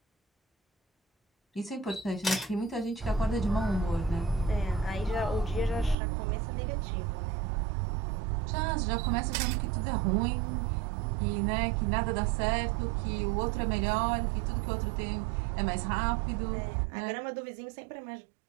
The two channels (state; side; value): drops out; left; at 6.0 s